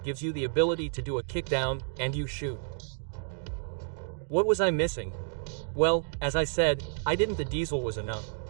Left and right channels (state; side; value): silent; left; digital silence